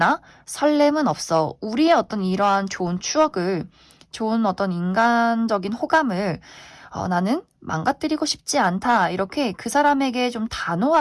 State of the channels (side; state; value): both; identical; correlation 1.00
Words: 설렘은 없어. 우리의 어떤 이러한 좋은 추억을, 좋은 어떤 인간적인 호감을 나는 망가뜨리고 싶지 않다. 이렇게 그 사람에게 좀